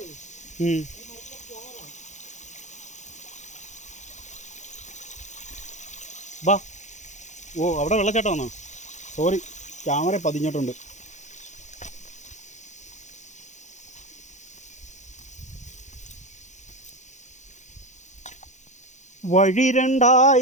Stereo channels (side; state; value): right; late; 0.35 ms